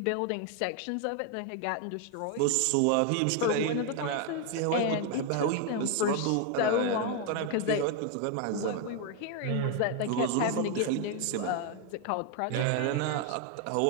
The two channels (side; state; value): both; different; correlation 0.01